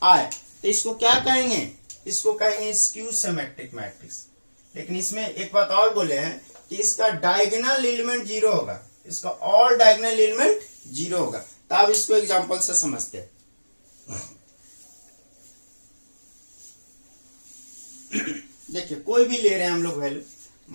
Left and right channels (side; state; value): both; inverted; correlation -1.00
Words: आए, तो इसको क्या कहेंगे, इसको कहेंगे स्क्यू सिमेट्रिक मैट्रिक्स। लेकिन इसमें एक बात और बोले हैं कि इसका डायगोनल एलिमेंट 0 होगा, इसका ऑल डायगोनल एलिमेंट 0 होगा। तो अब इसको एग्जांपल से समझते हैं। देखिए कोई भी ले रहे हैं हम लोग वैल्यू,